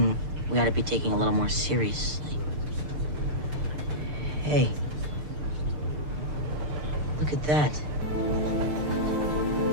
we ought to be taking a little more seriously. Hey. Look at that.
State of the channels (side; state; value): left; late; 6.7 ms